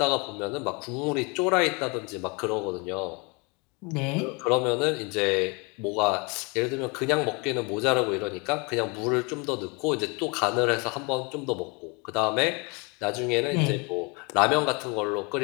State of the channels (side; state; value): right; quieter; 30.1 dB